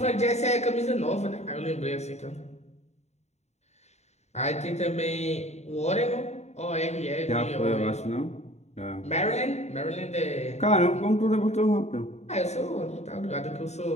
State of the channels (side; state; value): right; late; 0.32 ms